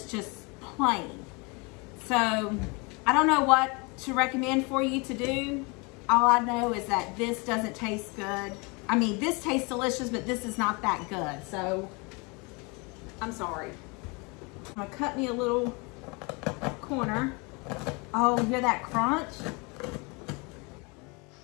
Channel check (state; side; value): quieter; right; 29.4 dB